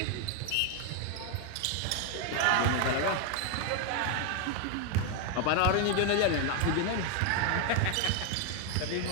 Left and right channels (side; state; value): both; different; correlation 0.01